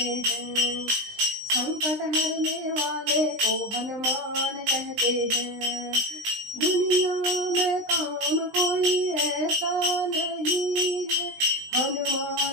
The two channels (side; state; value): left; late; 20 ms